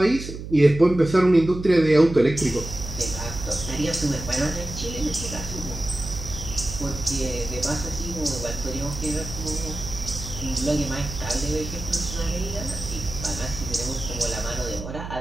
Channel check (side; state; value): right; noise; hum, 9 dB below the sound